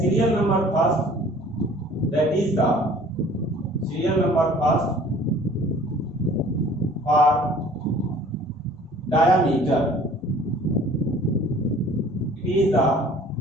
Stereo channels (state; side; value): normal; both; correlation 0.51